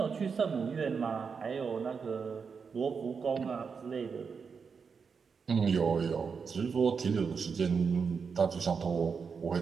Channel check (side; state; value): left; quieter; 5.7 dB